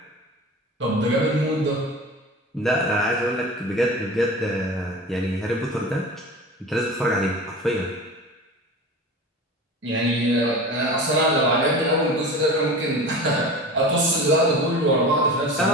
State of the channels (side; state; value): both; normal; correlation 0.34